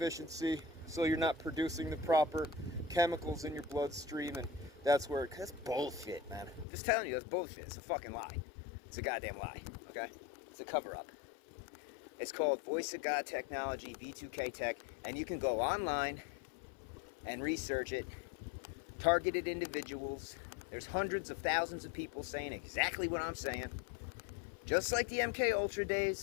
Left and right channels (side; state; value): right; drops out; at 6.7 s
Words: so you're not producing the proper chemicals in your bloodstream, and that's where that's bullshit, man. I'm just telling you, that's bullshit. It's a fucking lie. It's a goddamn lie, okay? It's a cover-up. It's called Voice of God Technology, V2K Tech, and you can go online and research it. Targeted individuals. There's hundreds of thousands of people saying exactly what I'm saying. Just like the MK Ultra days,